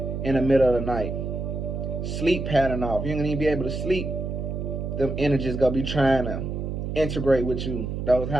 in the middle of the night. Sleep pattern off. You ain't gonna even be able to sleep. Them energies gonna be trying to integrate with you. Those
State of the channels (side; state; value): right; noise; hum, 4 dB below the sound